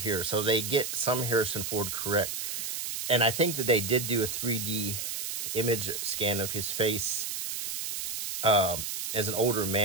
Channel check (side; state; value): right; noise; hiss, 4 dB below the sound